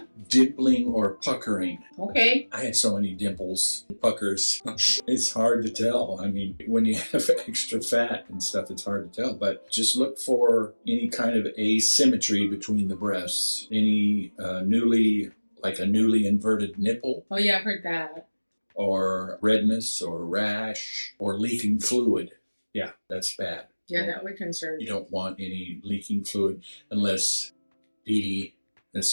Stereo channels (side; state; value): both; inverted; correlation -1.00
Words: dimpling or puckering. Okay. I had so many dimples, puckers. It's hard to tell. I mean, when you have extra fat and stuff, it's hard to tell. But just look for any kind of asymmetry between the breasts. Any newly inverted nipple, Oh, yeah, I've heard that. or redness or rash or leaking fluid. Yeah, that's bad. Yeah, that would concern You me. don't want any leaking fluid unless Dee Dee has